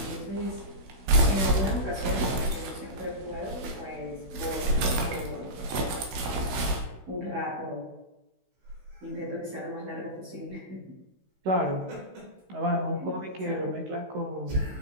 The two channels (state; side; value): late; left; 16 ms